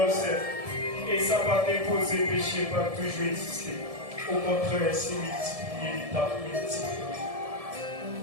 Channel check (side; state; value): left; late; 1.7 ms